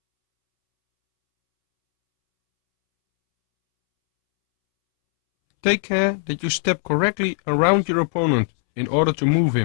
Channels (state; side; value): silent; right; 66 dB below the other